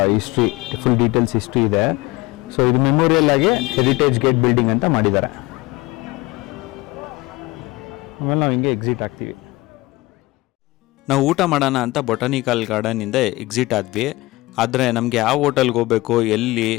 ಹಿಸ್ಟ್ರಿ, ಫುಲ್ ಡೀಟೇಲ್ಸ್ ಹಿಸ್ಟ್ರಿ ಇದೆ. ಸೊ ಇದು ಮೆಮೋರಿಯಲ್ ಆಗಿ ಹೆರಿಟೇಜ್ ಗೇಟ್ ಬಿಲ್ಡಿಂಗ್ ಅಂತ ಮಾಡಿದ್ದಾರೆ. ಆಮೇಲೆ ನಾವು ಹಿಂಗೆ ಎಕ್ಸಿಟ್ ಆಗ್ತೀವಿ. ನಾವು ಊಟ ಮಾಡೋಣ ಅಂತ ಬೊಟಾನಿಕಲ್ ಗಾರ್ಡನಿಂದ ಎಕ್ಸಿಟ್ ಆದ್ವಿ. ಆದರೆ ನಮಗೆ ಯಾವ ಹೋಟೆಲ್ಗೆ ಹೋಗಬೇಕು, ಎಲ್ಲಿ,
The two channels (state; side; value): quieter; right; 20.8 dB